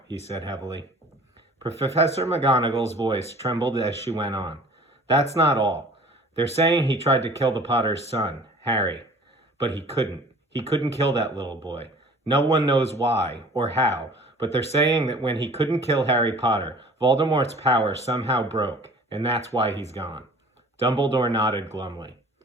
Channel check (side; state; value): both; normal; correlation 0.47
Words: he said heavily. Professor McGonagall's voice trembled as she went on. "That's not all. They're saying he tried to kill the Potter's son, Harry. But he couldn't. He couldn't kill that little boy. No one knows why or how, but they're saying that when he couldn't kill Harry Potter, Voldemort's power somehow broke, and that's why he's gone." Dumbledore nodded glumly.